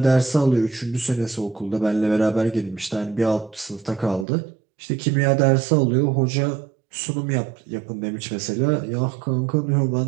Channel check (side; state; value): left; drops out; at 4.2 s